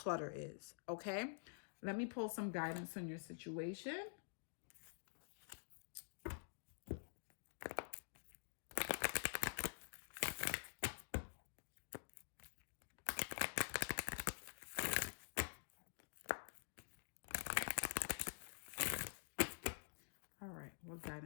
is, okay? Let me pull some guidance on your situation. All right, what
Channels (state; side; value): silent; right; digital silence